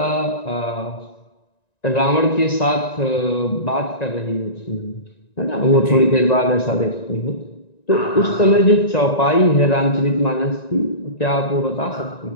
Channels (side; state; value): right; late; 1.9 ms